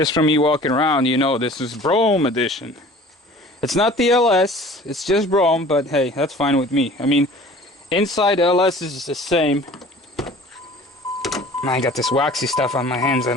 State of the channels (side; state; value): both; normal; correlation 0.46